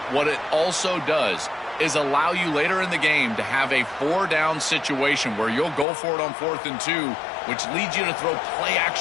what it also does is allow you later in the game to have a 4-down situation where you'll go for it on 4th and 2, which leads you to throw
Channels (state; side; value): drops out; right; at 5.9 s